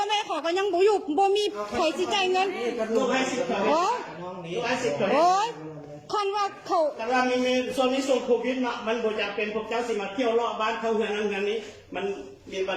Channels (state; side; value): identical; both; correlation 1.00